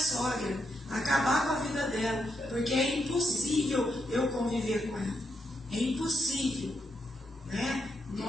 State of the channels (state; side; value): normal; both; correlation 0.81